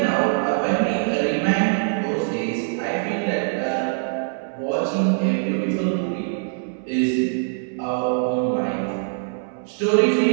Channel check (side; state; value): left; silent; 64 dB below the other